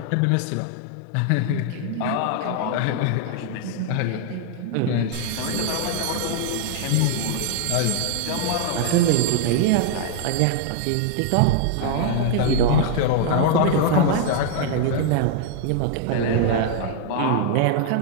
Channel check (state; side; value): different; both; correlation 0.00